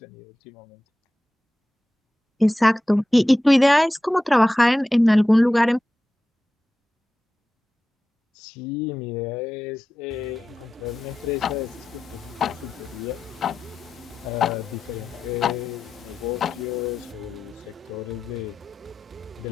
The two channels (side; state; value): both; normal; correlation 0.93